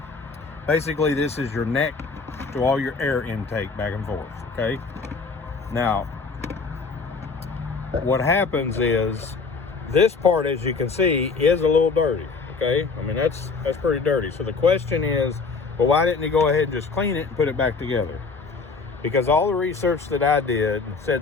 Basically, this is your neck to all your air intake back and forth, okay? Now, what happens is, this part, as you can see, is a little dirty, okay? I mean, that's pretty dirty. So the question is, well, why didn't he go ahead and just clean it and put it back together? Because all the research that I did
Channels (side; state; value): right; quieter; 4.5 dB